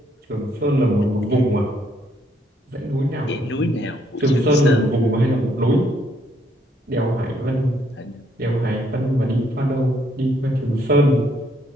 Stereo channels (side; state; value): both; normal; correlation 0.70